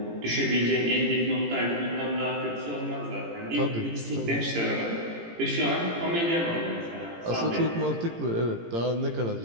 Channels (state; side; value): late; left; 18 ms